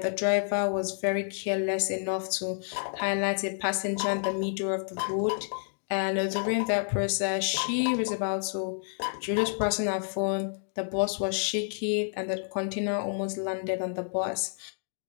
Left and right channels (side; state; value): right; silent; digital silence